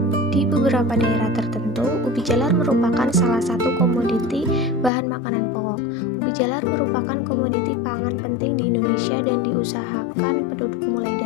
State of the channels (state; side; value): drops out; right; at 4.9 s